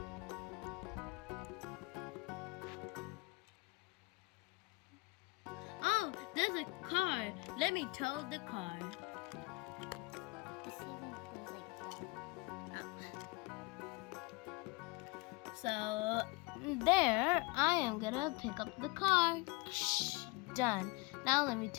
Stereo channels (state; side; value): quieter; right; 26.4 dB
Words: Oh, there's a car. Let me tow the car. So there, I am gonna pick up the car. Done. Now let me